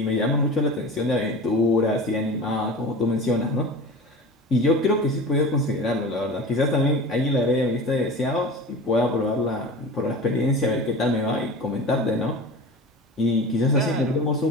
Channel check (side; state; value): both; normal; correlation 0.34